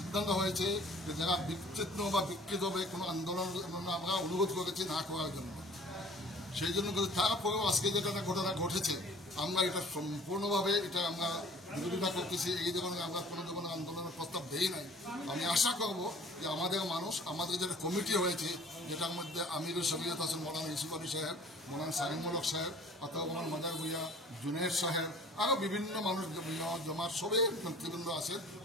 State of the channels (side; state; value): both; normal; correlation 0.49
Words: হয়েছে যে যারা বিচ্ছিন্ন বা বিকৃত হবে কোনো আন্দোলন আমরা অনুরোধ করেছি না করার জন্য। সেই জন্য তারপরেও আজকে যেটা ঘটনা ঘটেছে আমরা এটা সম্পূর্ণভাবে এটা আমরা বিরোধিতা করতেছি। এই ধরনের আমরা কোনো ধরনের আন্দোলনের প্রস্তাব দেই নাই। আমি আশা করব যে আমাদের মানুষ, আমাদের যেটা কমিটি হয়েছে যেটার মধ্যে আমিরুল শরীয়ত আছেন মৌলানা ইউসুফ আলী সাহেব, মৌলানা সারিমুল হক সাহেব, আতাউর রহমান মাদার ভুইয়া, জুনেদ সাহেব, আরও বিভিন্ন মানুষ জমার সবাই নেতৃবৃন্দ আছে।